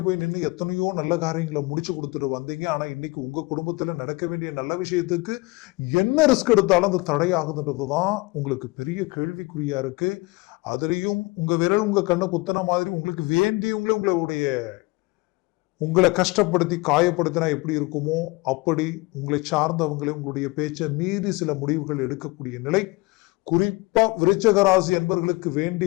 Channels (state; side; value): quieter; right; 24.3 dB